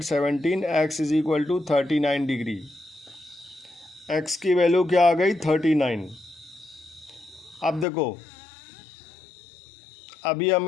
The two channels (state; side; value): drops out; right; at 7.9 s